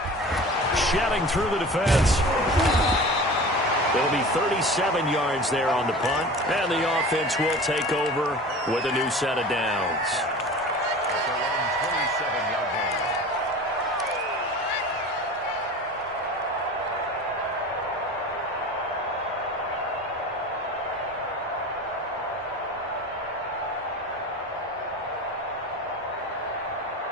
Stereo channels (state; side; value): normal; both; correlation 0.37